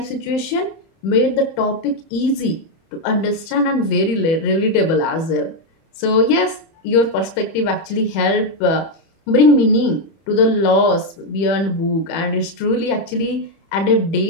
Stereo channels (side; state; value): right; late; 31 ms